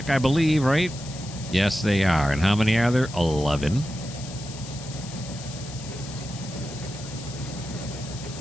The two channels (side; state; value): left; noise; hiss, 14 dB below the sound